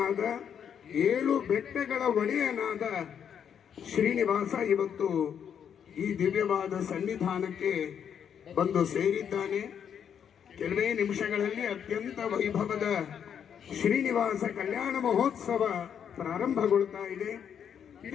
7 ಬೆಟ್ಟಗಳ ಒಡೆಯನಾದ ಶ್ರೀನಿವಾಸ ಇವತ್ತು ಈ ದಿವ್ಯವಾದ ಸನ್ನಿಧಾನಕ್ಕೆ ಬಂದು ಸೇರಿದ್ದಾನೆ. ಕೆಲವೇ ನಿಮಿಷಗಳಲ್ಲಿ ಅತ್ಯಂತ ವೈಭವದ ಶ್ರೀನಿವಾಸ ಕಲ್ಯಾಣ ಮಹೋತ್ಸವ ಪ್ರಾರಂಭಗೊಳ್ತಾ ಇದೆ.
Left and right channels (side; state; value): right; quieter; 8.2 dB